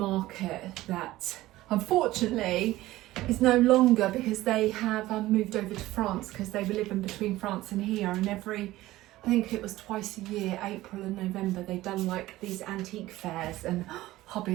that unfortunately is no longer, because they have moved over to France, because they were living between France and here, and I think it was twice a year, April and November, they've done like these antique fairs, and hubby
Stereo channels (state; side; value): quieter; left; 16.8 dB